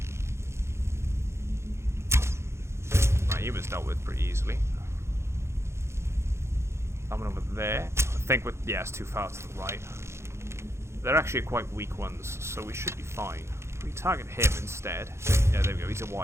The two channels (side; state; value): left; late; 0.13 ms